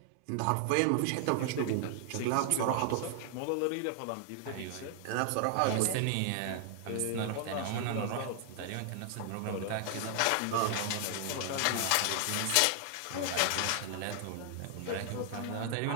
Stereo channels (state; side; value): different; both; correlation 0.00